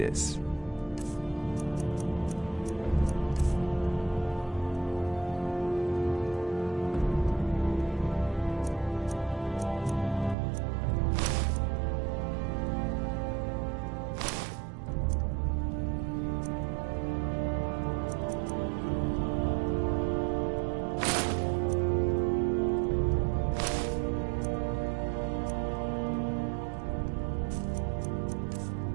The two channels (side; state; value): left; drops out; at 10.4 s